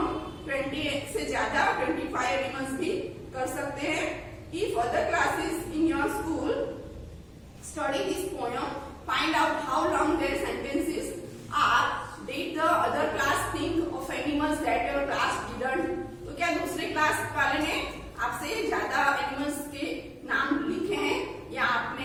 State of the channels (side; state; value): both; identical; correlation 1.00